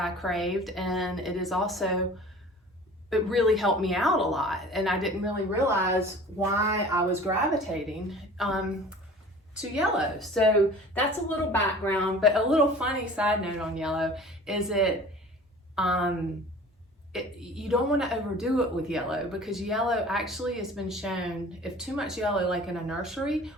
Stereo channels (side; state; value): both; normal; correlation 0.44